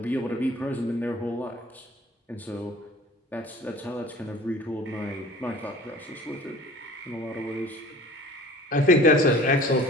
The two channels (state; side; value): normal; both; correlation 0.45